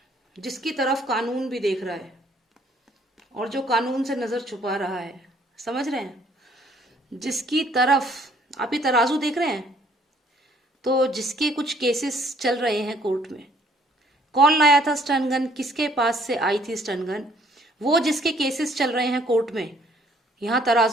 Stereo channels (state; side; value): normal; both; correlation 0.62